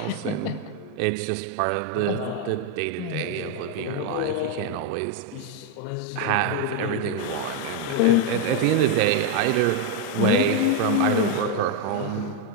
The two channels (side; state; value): both; different; correlation 0.01